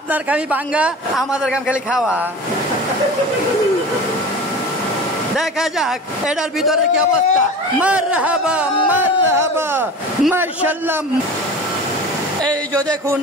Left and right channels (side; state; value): both; normal; correlation 0.35